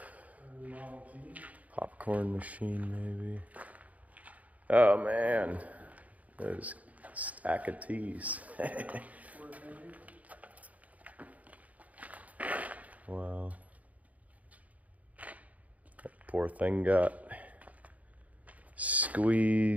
popcorn machine maybe. Oh man, there's a stack of teas. Wow. That poor thing got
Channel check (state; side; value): late; left; 0.071 ms